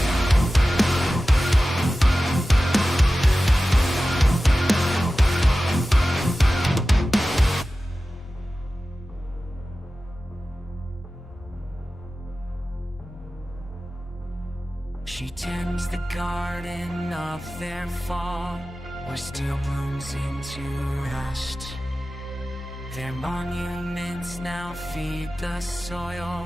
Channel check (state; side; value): normal; both; correlation 0.95